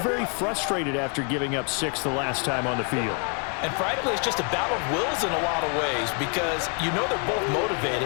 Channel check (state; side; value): quieter; right; 37.2 dB